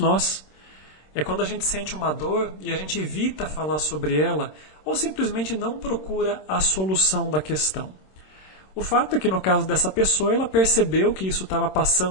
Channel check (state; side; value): late; right; 26 ms